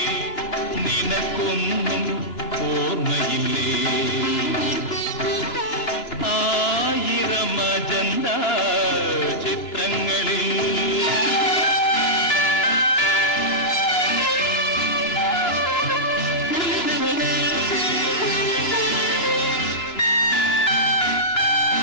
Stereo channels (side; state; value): right; late; 3.0 ms